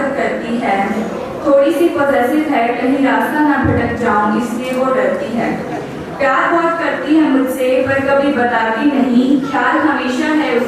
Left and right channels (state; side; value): identical; both; correlation 1.00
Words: करती है। थोड़ी सी पॉजेसिव है, कहीं रास्ता ना भटक जाऊं इसलिए वो डरती है। प्यार बहुत करती है मुझसे पर कभी बताती नहीं, ख्याल हमेशा है